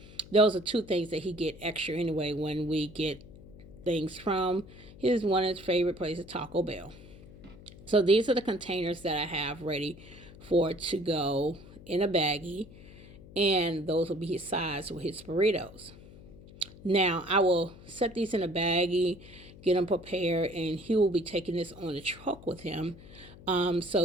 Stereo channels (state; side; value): noise; left; hum, 19 dB below the sound